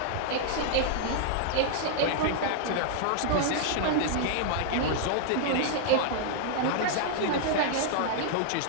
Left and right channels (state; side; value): different; both; correlation -0.01